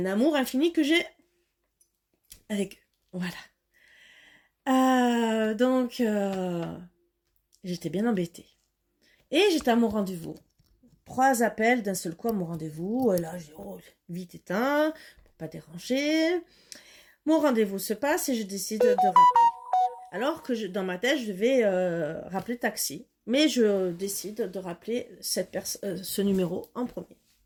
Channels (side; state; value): both; identical; correlation 1.00